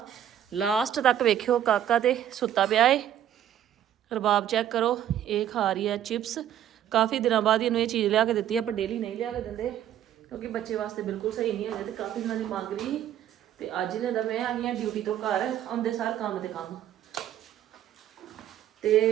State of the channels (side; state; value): left; quieter; 10.8 dB